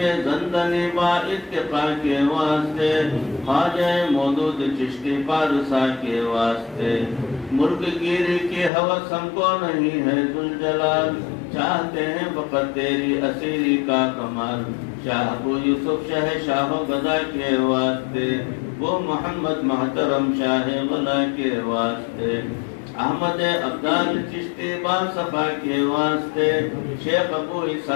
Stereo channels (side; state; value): right; drops out; at 8.7 s